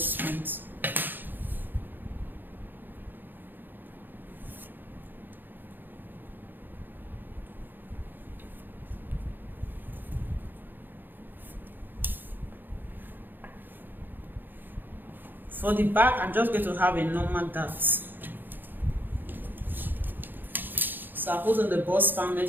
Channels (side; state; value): left; late; 0.092 ms